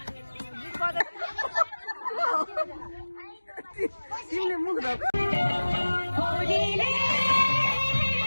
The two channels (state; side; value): inverted; both; correlation -1.00